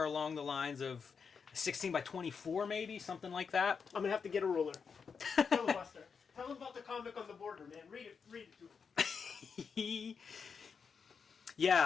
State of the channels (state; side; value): quieter; right; 5.9 dB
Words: along the lines of 16 by 24, maybe, something like that. I'm going to have to get a ruler. Filibuster. Tell them about the comic on the border, man. Read it to them.